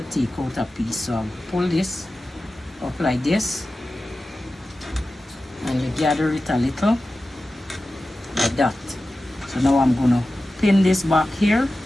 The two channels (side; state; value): both; normal; correlation 0.94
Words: take out a piece. So I'll pull this up like this, and you gather it a little like that. So now I'm gonna pin this back here